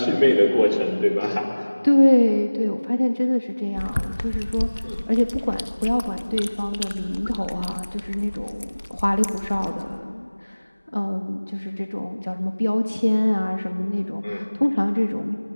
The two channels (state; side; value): inverted; both; correlation -1.00